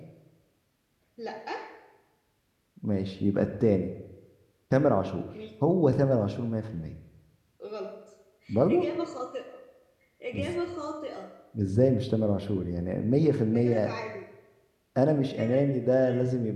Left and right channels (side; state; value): both; identical; correlation 1.00